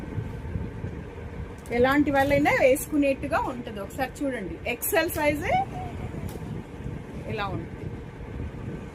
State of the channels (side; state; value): both; identical; correlation 1.00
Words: ఎలాంటి వాళ్ళైనా వేసుకునేట్టుగా ఉంటుంది. ఒకసారి చూడండి, ఎక్సెల్ సైజే ఇలా ఉంటుంది.